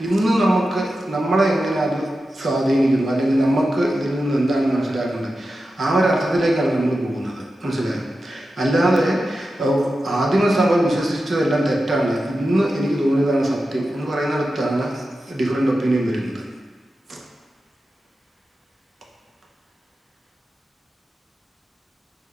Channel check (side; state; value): both; normal; correlation 0.92